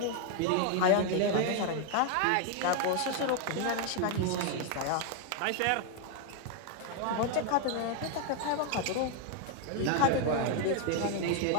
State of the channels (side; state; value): both; different; correlation 0.00